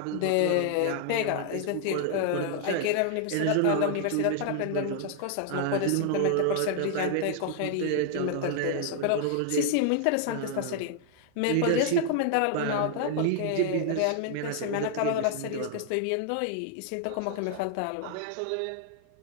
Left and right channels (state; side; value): different; both; correlation 0.00